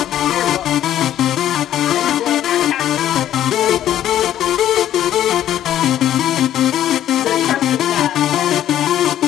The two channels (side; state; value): right; quieter; 11.7 dB